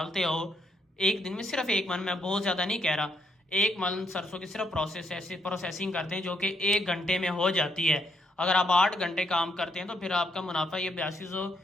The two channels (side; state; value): both; normal; correlation 0.75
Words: हो, एक दिन में सिर्फ 1 मन, मैं बहुत ज़्यादा नहीं कह रहा, 1 मन सरसों की सिर्फ प्रोसेसिंग करते हैं जो कि 1 घंटे में हो जाती है। अगर आप 8 घंटे काम करते हैं तो फिर आपका मुनाफा ये